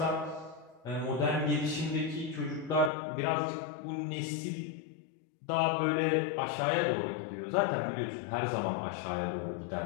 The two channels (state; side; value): drops out; right; at 2.9 s